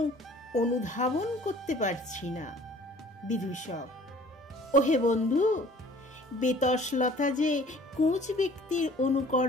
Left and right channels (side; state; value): both; normal; correlation 0.51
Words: অনুধাবন করতে পারছি না। বিদূষক, ওহে বন্ধু, বেতসলতা যে কুঁচ ব্যক্তির